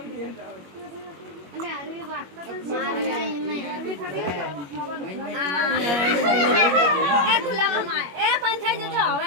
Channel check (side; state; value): left; late; 21 ms